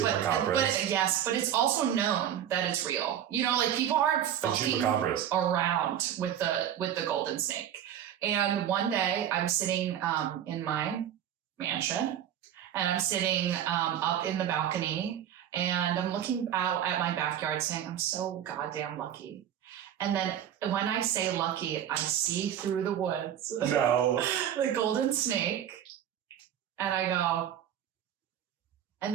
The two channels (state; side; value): quieter; left; 10.2 dB